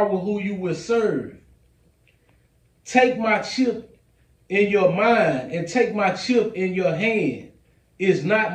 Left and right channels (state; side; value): identical; both; correlation 1.00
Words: who you will serve. Take my chip in your mind and take my chip in your hand. Is